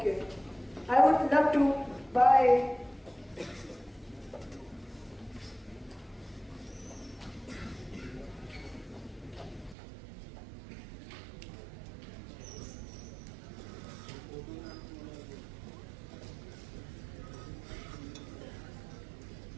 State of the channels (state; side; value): drops out; left; at 9.8 s